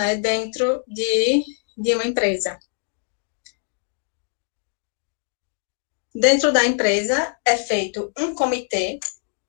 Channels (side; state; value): right; silent; digital silence